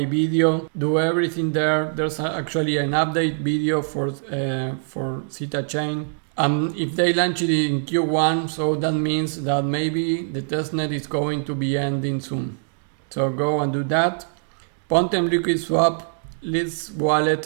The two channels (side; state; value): left; silent; digital silence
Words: video, do everything there. There's actually an update video for Zeta Chain. If they launch it in Q1, so that means that maybe the testnet is going to be ending soon. So go and do that. Pontem Liquid Swap leads